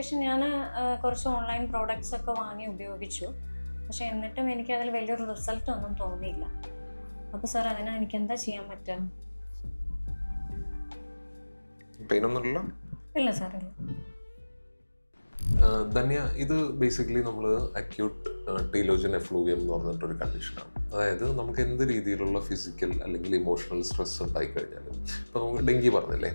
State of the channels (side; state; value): both; inverted; correlation -1.00